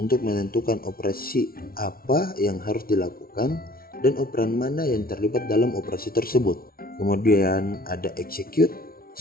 menentukan operasi apa yang harus dilakukan dan operan mana yang terlibat dalam operasi tersebut. Kemudian ada execute.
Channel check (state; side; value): late; right; 0.43 ms